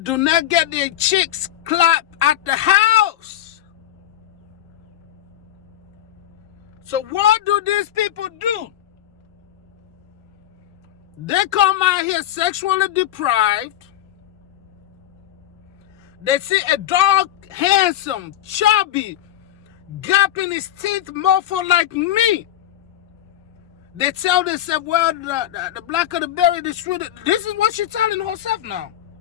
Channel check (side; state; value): right; quieter; 12.3 dB